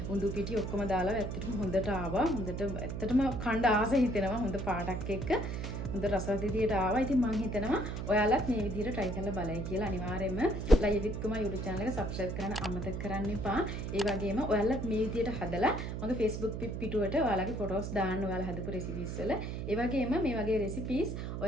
උඳු පිටි ඔක්කොම දාලා ඇත්තටම හොඳට ආවා. හොඳට ඇත්තටම කණ්ඩ ආස හිතෙනවා හොඳ පාටක් එක්ක. හොඳ රසවත් විදියට ආවා. ඉතින් මම හිතනවා ඔයාලත් මේ විදියට try කරලා බලයි කියලා. අනිවාර්යයෙන්ම Laiya with Kuma YouTube channel එක subscribe කරන්න අමතක කරන්න එපා. ඒ වගේම ඔයාලත් මේ විදියට හදලා මගේ Facebook පිටුවට ඔයාලගේ photos දාන්න ඔයාලා හදපු recipes වල. ඒ වගේම මේ වගේ recipes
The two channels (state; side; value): noise; right; hum, 4 dB below the sound